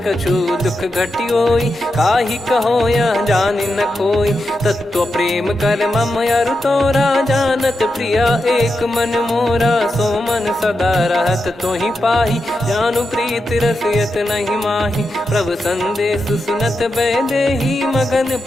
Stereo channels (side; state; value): both; normal; correlation 0.88